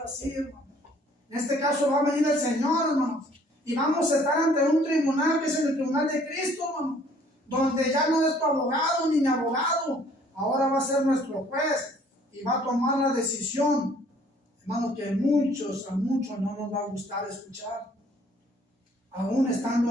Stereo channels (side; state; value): both; normal; correlation 0.59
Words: hermanos. En este caso va a venir el Señor, hermanos, y vamos a estar ante un tribunal que es el tribunal de Cristo, hermanos, donde ya no es tu abogado ni mi abogado, ahora va a ser nuestro juez y va a tomar la decisión, hermanos, que a muchos no nos va a gustar escuchar, aún estando